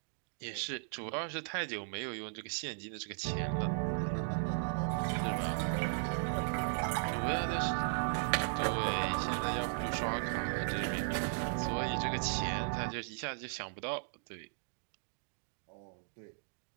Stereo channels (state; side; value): silent; left; digital silence